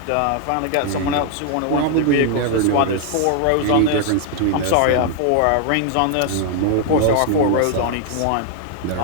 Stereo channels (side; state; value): both; different; correlation 0.00